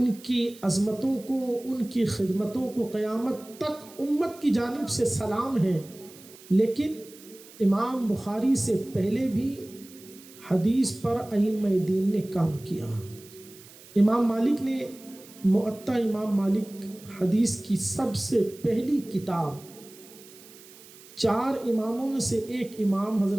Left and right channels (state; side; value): noise; right; hiss, 21 dB below the sound